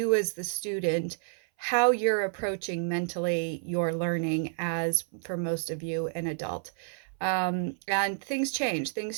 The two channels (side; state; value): left; silent; 58 dB below the other